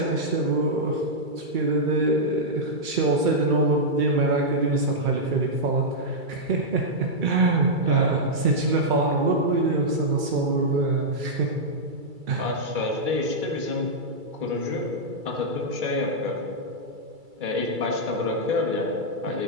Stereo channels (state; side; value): late; left; 2.3 ms